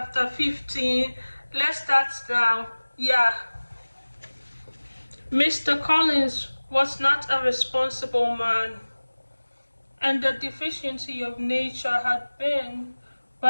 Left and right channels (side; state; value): both; inverted; correlation -1.00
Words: 15. Let's start now. Yeah. Mr. Collins was not a responsible man, and the deficiency of nature had been